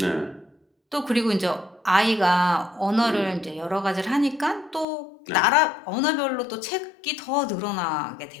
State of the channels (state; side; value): drops out; right; at 4.9 s